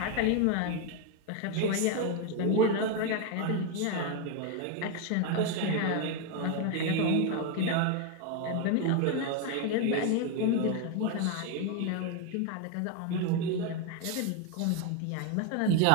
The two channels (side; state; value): both; different; correlation 0.02